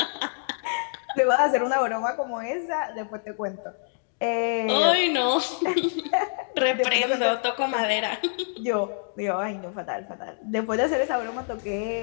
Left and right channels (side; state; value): right; silent; digital silence